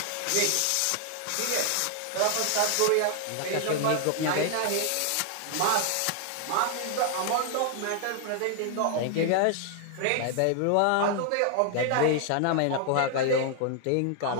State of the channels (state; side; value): different; both; correlation 0.00